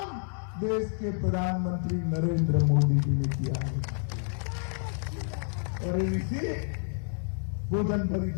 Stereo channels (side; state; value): right; silent; 58 dB below the other